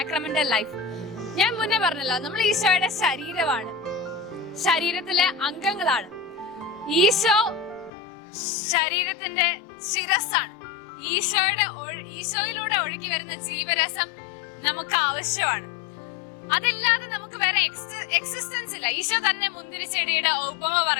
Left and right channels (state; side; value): drops out; right; at 7.9 s